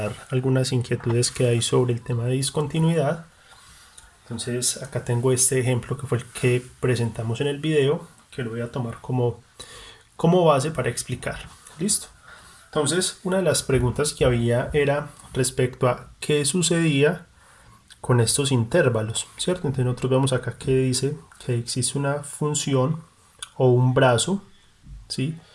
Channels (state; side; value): identical; both; correlation 1.00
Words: algunas inquietudes que hay sobre el tema de discontinuidad. Entonces, acá tengo este ejemplo que fue el que presentamos en el video, que lo voy a tomar como base para explicar. ¿Listo? Entonces, una de las preguntas que había era respecto a qué sucedía con estos intervalos, ¿cierto? Entonces, nosotros vemos acá que dice que existe una función o un brazo, ¿sí?,